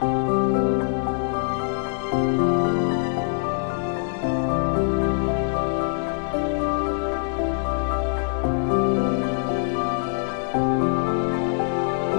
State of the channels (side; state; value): right; silent; digital silence